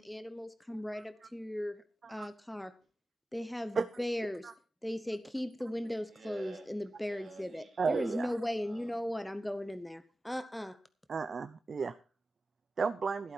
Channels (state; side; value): normal; both; correlation 0.94